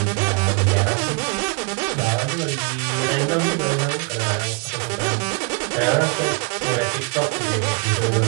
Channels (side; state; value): left; quieter; 33.4 dB